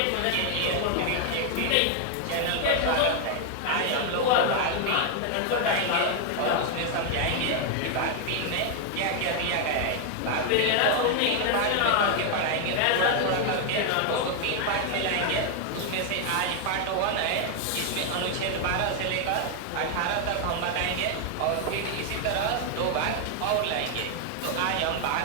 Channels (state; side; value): different; both; correlation 0.00